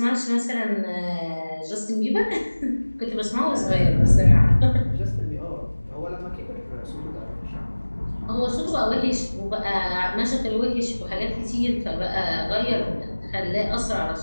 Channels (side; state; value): both; inverted; correlation -1.00